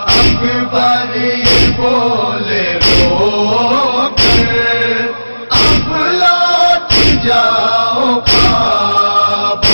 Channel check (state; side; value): inverted; both; correlation -1.00